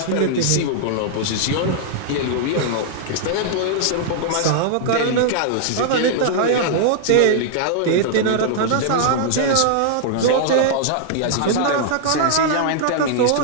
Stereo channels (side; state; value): both; different; correlation -0.01